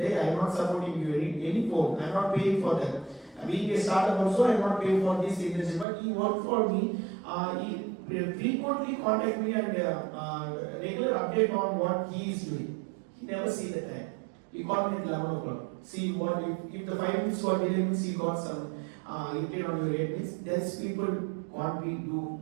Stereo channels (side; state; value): left; drops out; at 5.9 s